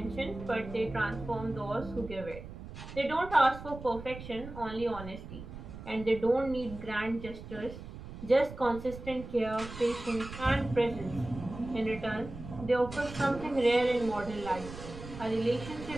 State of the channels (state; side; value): noise; right; rumble, 12 dB below the sound